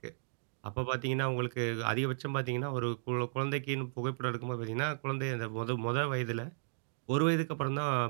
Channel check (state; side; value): silent; left; digital silence